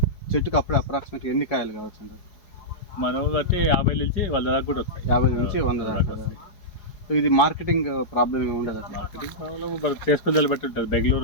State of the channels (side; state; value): right; late; 4.8 ms